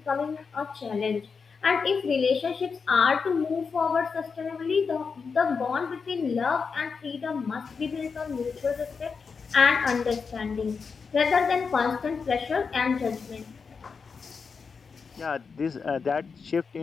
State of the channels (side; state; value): right; quieter; 5.4 dB